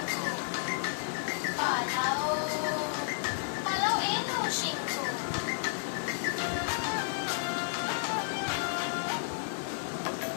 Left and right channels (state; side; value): silent; right; digital silence